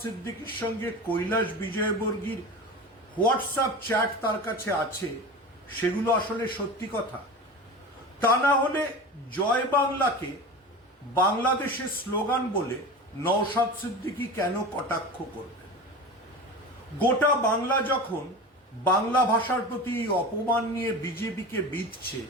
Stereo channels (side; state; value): both; normal; correlation 0.30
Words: সিদ্দিকীর সঙ্গে কৈলাস বিজয়বর্গীর হোয়াটসঅ্যাপ চ্যাট তার কাছে আছে, সেগুলো আসলে সত্যি কথা? তা না হলে জয় বাংলাকে বাংলাদেশের স্লোগান বলে নওশাদ সিদ্দিকী কেন কটাক্ষ করবেন? গোটা বাংলা যখন বাংলা ভাষার প্রতি অপমান নিয়ে বিজেপিকে বিঁধছে,